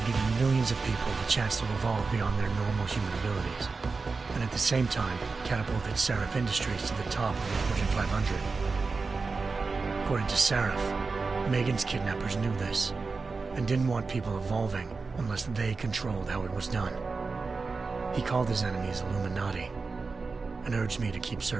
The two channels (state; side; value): quieter; left; 4.3 dB